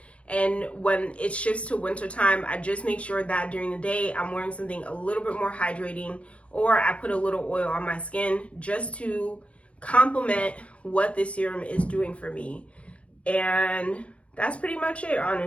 And when it shifts to winter time, I just make sure that during the day I'm wearing something a little bit more hydrating, or I put a little oil on my skin just to complement what this serum is doing for me. And that's pretty much it,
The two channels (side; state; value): right; late; 0.062 ms